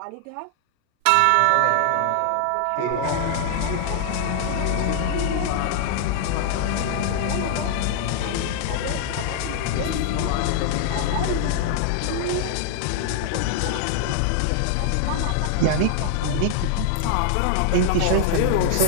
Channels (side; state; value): both; different; correlation 0.00